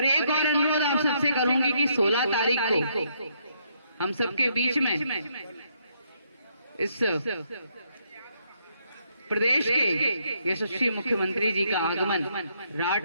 एक और अनुरोध आप सबसे करूंगी कि 16 तारीख को हम सबके बीच में इस प्रदेश के यशस्वी मुख्यमंत्री जी का आगमन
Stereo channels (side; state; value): both; inverted; correlation -0.73